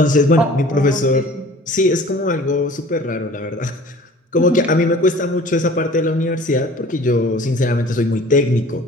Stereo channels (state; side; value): normal; both; correlation 0.47